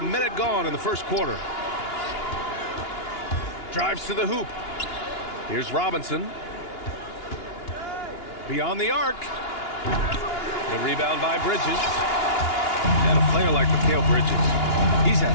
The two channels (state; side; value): late; right; 2.9 ms